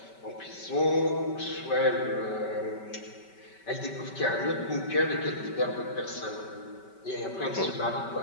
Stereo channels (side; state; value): right; late; 5.2 ms